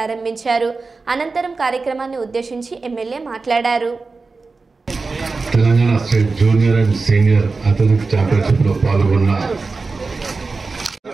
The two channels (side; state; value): left; quieter; 4.0 dB